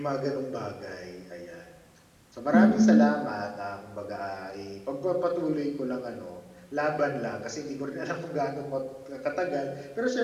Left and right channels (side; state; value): both; identical; correlation 1.00